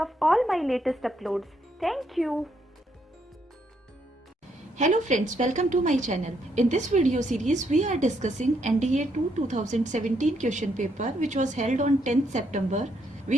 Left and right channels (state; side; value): normal; both; correlation 0.75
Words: all my latest uploads. Thank you. Hello friends, welcome to my channel. In this video series, we are discussing NDA-II 2017 question paper which was held on 10th September.